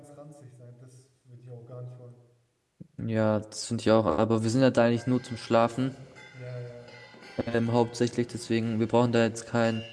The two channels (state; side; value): identical; both; correlation 1.00